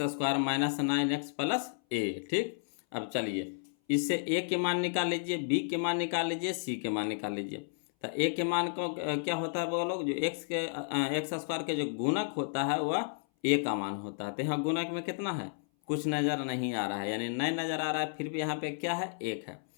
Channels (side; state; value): right; silent; 56 dB below the other